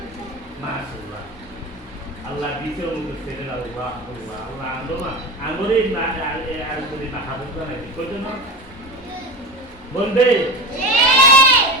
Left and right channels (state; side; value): normal; both; correlation 0.27